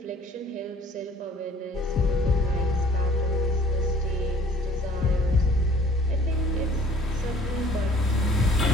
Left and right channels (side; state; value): both; normal; correlation 0.54